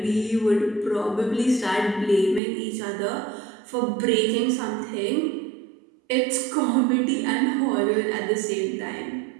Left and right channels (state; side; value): drops out; left; at 2.4 s